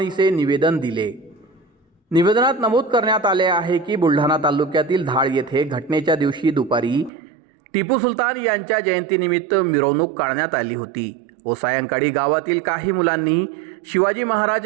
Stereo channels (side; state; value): left; drops out; at 7.1 s